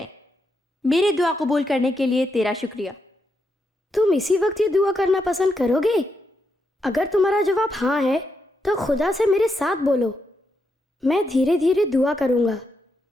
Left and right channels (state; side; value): normal; both; correlation 0.82